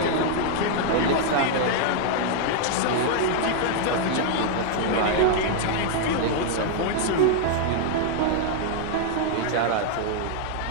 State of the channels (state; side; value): different; both; correlation 0.00